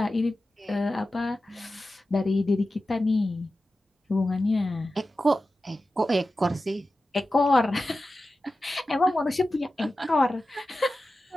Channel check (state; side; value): normal; both; correlation 0.93